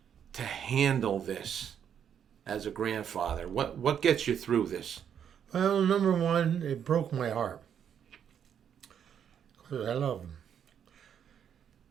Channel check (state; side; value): quieter; left; 8.5 dB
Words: to handle this as a grandfather? What gets you through this? Well, number one, it broke my heart because I love him.